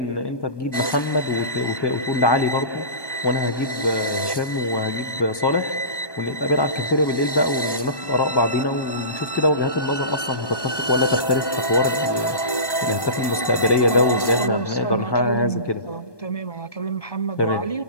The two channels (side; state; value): right; late; 1.2 ms